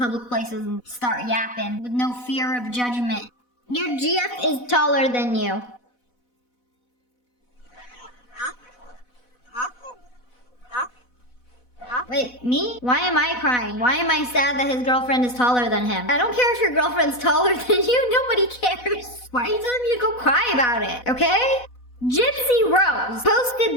places and start yapping with no fear of judgment. Your GF is taller than you. Wait, me? Why am I crying? Why am I sad that his girlfriend is taller than him? I don't care if your girlfriend's taller than you. Nobody cares. Why are you telling me to go cry about it, okay? Gypsy Rose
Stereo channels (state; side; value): late; right; 4.1 ms